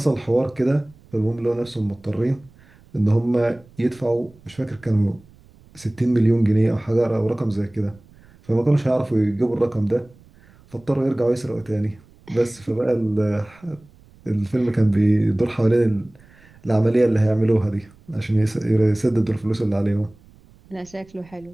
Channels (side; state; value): right; noise; rumble, 27 dB below the sound